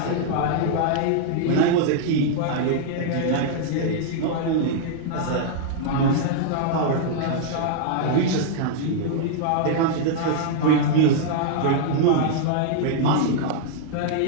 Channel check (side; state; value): both; different; correlation -0.01